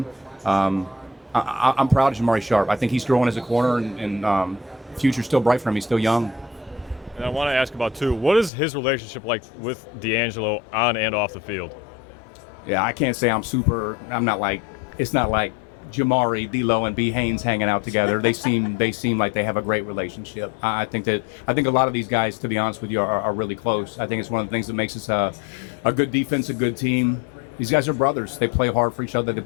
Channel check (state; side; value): drops out; right; at 8.5 s